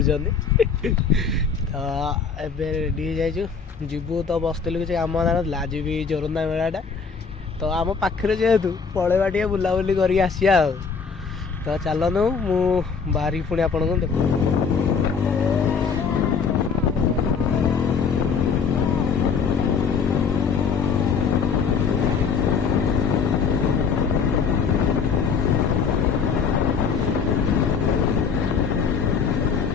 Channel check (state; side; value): quieter; right; 5.7 dB